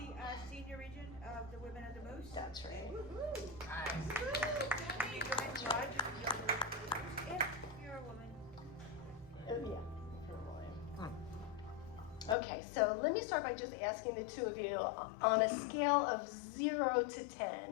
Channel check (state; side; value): drops out; right; at 12.4 s